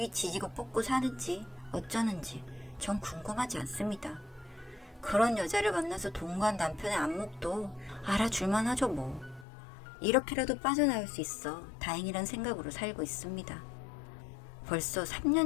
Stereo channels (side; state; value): right; drops out; at 9.5 s